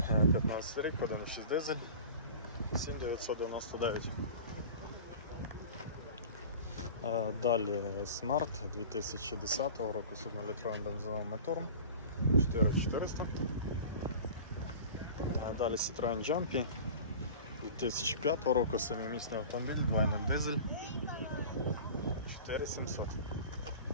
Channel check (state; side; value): inverted; both; correlation -0.38